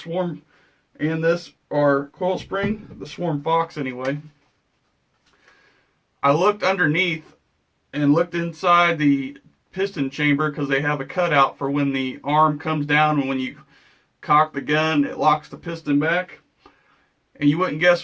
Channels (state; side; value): identical; both; correlation 1.00